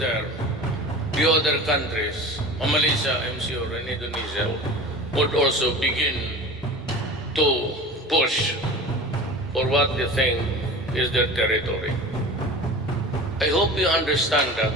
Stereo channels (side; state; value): both; normal; correlation 0.36